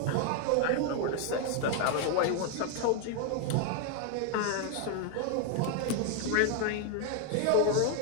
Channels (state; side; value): different; both; correlation 0.00